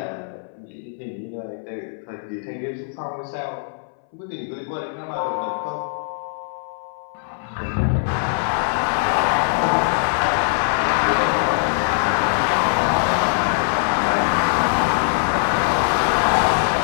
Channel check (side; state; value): right; silent; 64 dB below the other